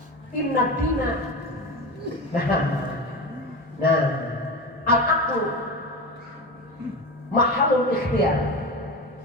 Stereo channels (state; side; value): normal; both; correlation 0.25